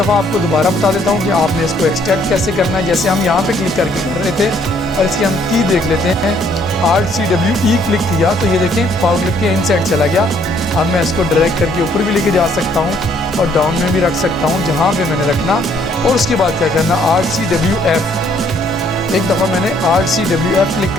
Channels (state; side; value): normal; both; correlation 0.65